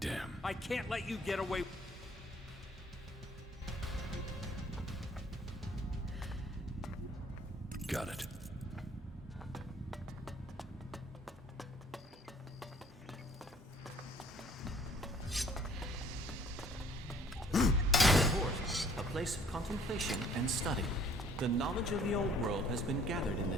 I can't let you get away. Got it. A place of contemplation and study. The knowledge of the old world has been gathered in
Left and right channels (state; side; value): normal; both; correlation 0.57